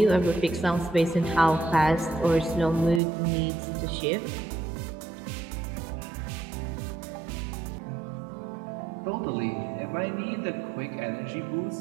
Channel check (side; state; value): left; drops out; at 3.0 s